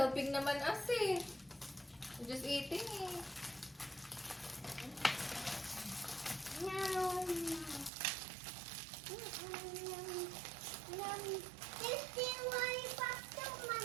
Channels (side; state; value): left; drops out; at 7.9 s